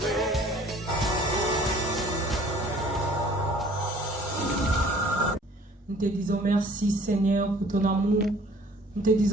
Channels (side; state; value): both; normal; correlation 0.52